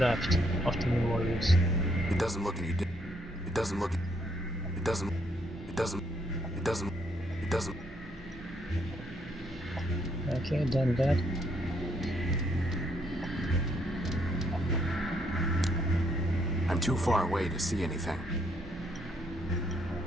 after Memorias. It doesn't look any different. It doesn't look... It doesn't... It doesn't... It doesn't... It doesn't... Okay, done that. I'm too far away to see anything.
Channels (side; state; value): both; normal; correlation 0.72